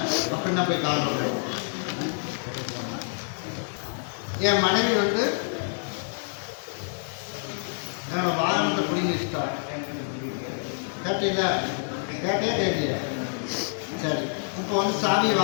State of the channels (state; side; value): silent; right; digital silence